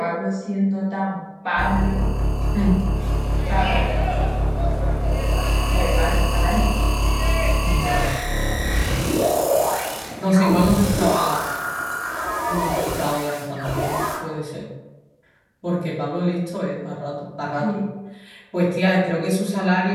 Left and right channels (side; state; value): both; identical; correlation 1.00